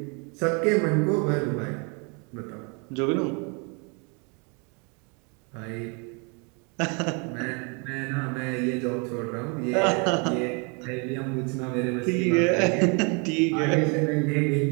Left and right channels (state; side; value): quieter; left; 33.5 dB